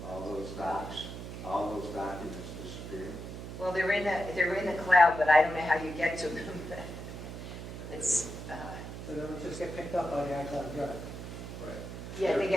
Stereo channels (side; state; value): right; noise; hum, 9 dB below the sound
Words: all those documents disappear. Well, they're in the cloud, but I don't know how you get to them. It's So they would just get picked up by the iCloud Drive. yeah.